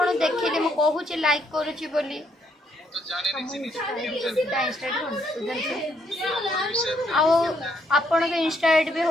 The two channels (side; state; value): both; normal; correlation 0.72